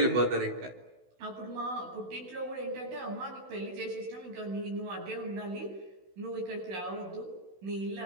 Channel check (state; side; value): late; left; 16 ms